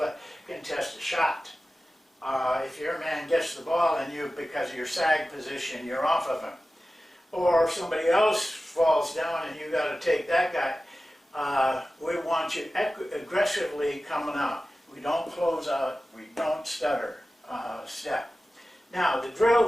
contest a shot. If your man gets the ball and because of your sag position, you're off of him. Or somebody else falls down and you got to take that guy. We want you aggressively coming out. We don't close out. We don't stutter step. Now, the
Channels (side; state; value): both; normal; correlation 0.95